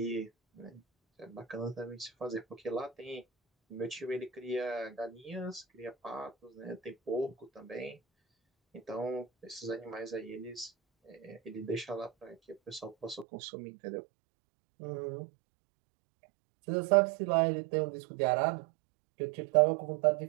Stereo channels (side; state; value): left; drops out; at 13.2 s